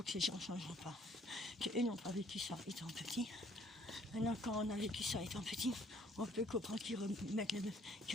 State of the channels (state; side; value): normal; both; correlation 0.61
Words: que ces gens ne changeront pas, qu'eux n'ont pas vécu ça étant petit. Maintenant, quand on a vécu ça étant petit, on peut comprendre qu'ils